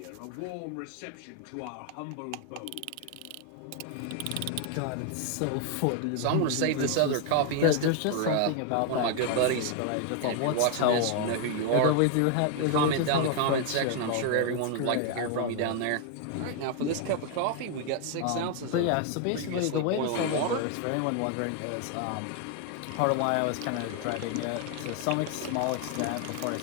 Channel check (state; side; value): different; both; correlation 0.00